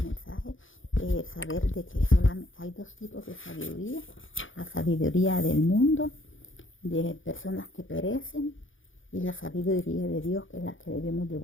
mensaje, saber de que solamente hay dos tipos de sabiduría: la sabiduría del mundo, de personas que perecen, y la sabiduría de Dios, que es la que debemos de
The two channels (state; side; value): late; right; 0.57 ms